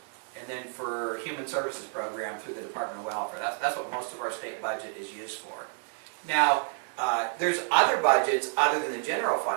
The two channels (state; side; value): silent; left; 58 dB below the other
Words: and then for human services program through the Department of Welfare. That's what most of our state budget is used for. Now, there's other budgets other than the general